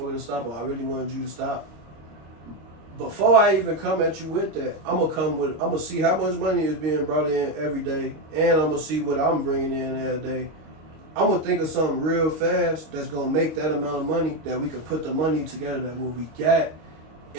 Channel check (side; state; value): left; late; 26 ms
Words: to stop, or I really wanted you to stop. Before I even come at you with that, I'm gonna see how much money is being brought in every day, and I'm gonna see what I'm bringing in every day. I'm gonna think of something real fast that's gonna make that amount of money that we could put the money together that what we got,